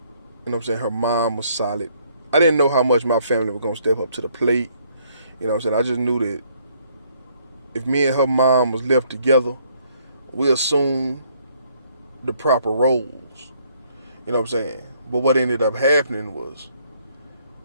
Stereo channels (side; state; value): both; inverted; correlation -0.66